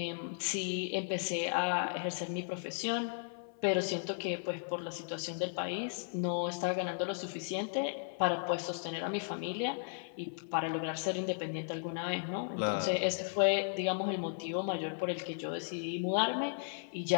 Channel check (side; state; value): right; silent; 54 dB below the other